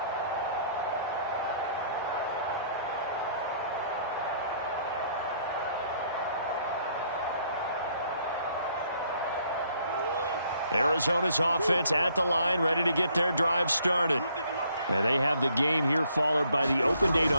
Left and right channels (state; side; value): inverted; both; correlation -0.65